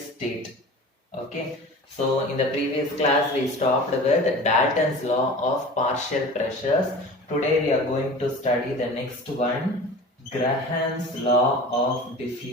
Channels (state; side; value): normal; both; correlation 0.37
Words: state. Okay, so in the previous class, we stopped with Dalton's law of partial pressures. Today, we are going to study the next one, Graham's law of